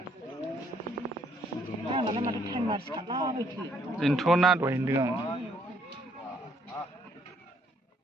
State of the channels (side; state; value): both; normal; correlation 0.68